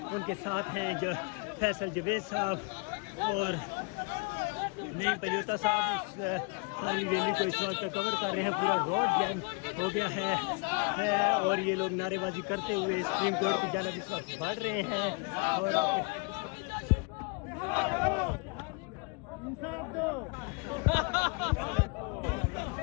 ان کے ساتھ ہیں جو فیصل جوید صاحب اور نئی پلیوتا صاحب اس ساری ریلی کو اس وقت کور کر رہے ہیں. پورا روڈ جیم ہو گیا ہے اور یہ لوگ نعرے بازی کرتے ہوئے سپریم کورٹ کی جانب اس وقت بڑھ رہے ہیں اور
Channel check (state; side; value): quieter; right; 32.1 dB